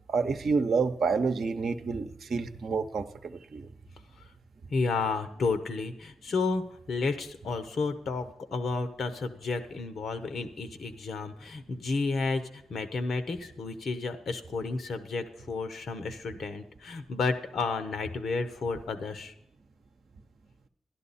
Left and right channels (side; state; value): both; normal; correlation 0.78